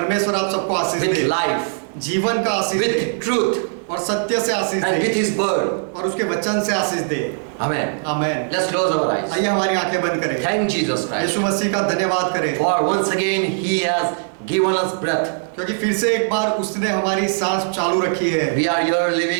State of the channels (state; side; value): silent; left; 66 dB below the other